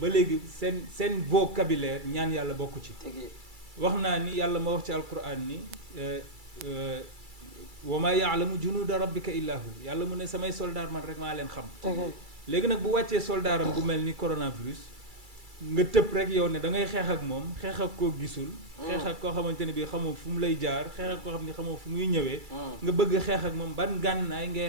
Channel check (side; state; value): left; late; 2.3 ms